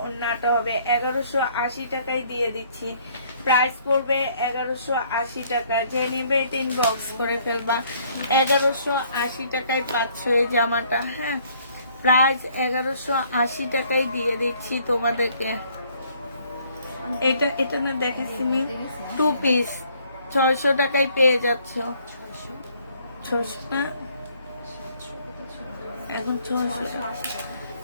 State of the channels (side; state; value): both; inverted; correlation -0.63